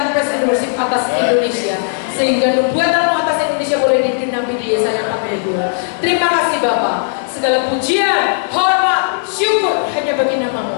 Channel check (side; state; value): right; silent; digital silence